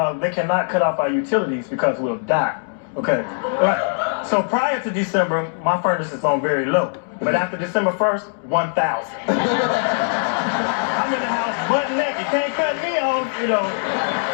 they cannot cut off our utilities because we'll die. Okay, right. So prior to December, my furnace is on very low. But after December 1st, 1,000. I'm in the house butt naked. Can't cut me off, you know.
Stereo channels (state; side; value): silent; right; digital silence